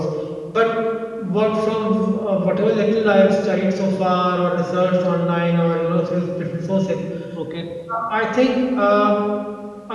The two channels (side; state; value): both; identical; correlation 1.00